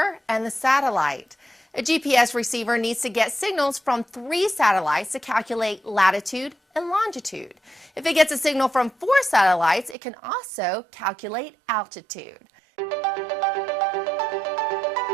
and the satellite. A GPS receiver needs to get signals from 3 satellites to calculate latitude and longitude. If it gets a signal from 4 satellites, it can also calculate altitude.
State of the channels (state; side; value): drops out; left; at 10.0 s